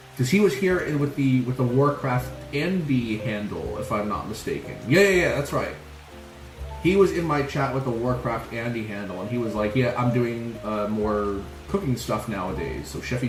Because he was here with the Warcraft Andy handle, if I'm not mistaken. Yeah, that's right. he was in my chat with the Warcraft Andy handle, and he was like, yeah, I'm doing more cooking stuff nowadays, so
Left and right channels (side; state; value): both; identical; correlation 1.00